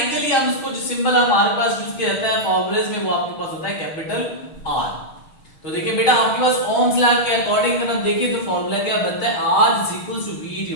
हम इसको जो सिंबल हमारे पास यूज किया जाता है फॉर्मूलेज में वो आपके पास होता है कैपिटल R। तो देखिए बेटा, आपके पास ओम्स लॉ के अकॉर्डिंग अगर हम देखें तो फॉर्मूला क्या बनता है, R = V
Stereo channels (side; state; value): right; late; 6.4 ms